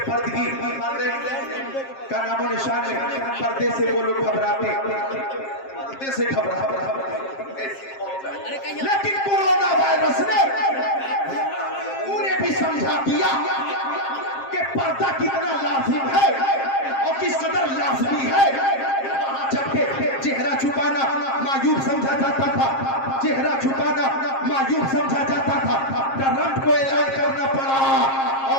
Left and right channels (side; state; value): right; late; 7.5 ms